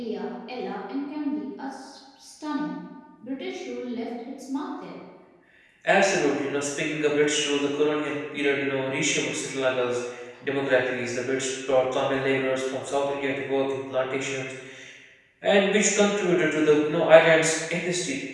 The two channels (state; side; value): identical; both; correlation 1.00